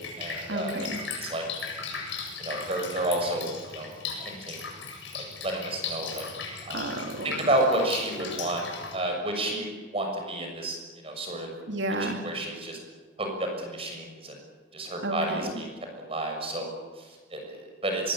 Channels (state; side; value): normal; both; correlation 0.07